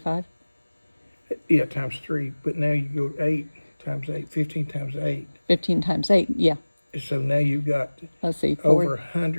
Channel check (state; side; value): inverted; both; correlation -1.00